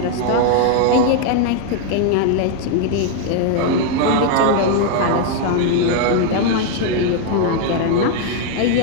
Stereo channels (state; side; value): different; both; correlation 0.00